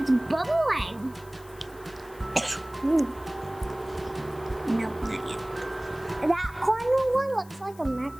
bubbling. Nope, not yet. That corner one looks like a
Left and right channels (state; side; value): noise; left; hiss, 24 dB below the sound